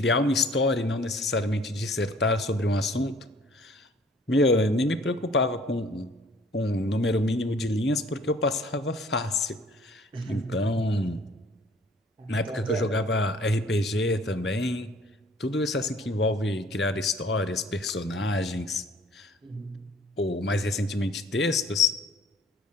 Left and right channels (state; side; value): normal; both; correlation 0.55